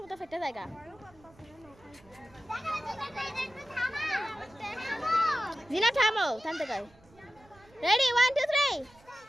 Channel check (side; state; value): right; noise; rumble, 27 dB below the sound